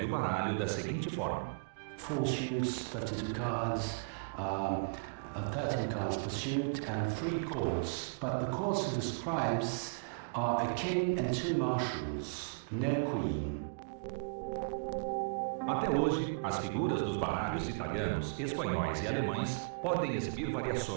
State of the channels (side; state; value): left; quieter; 38.4 dB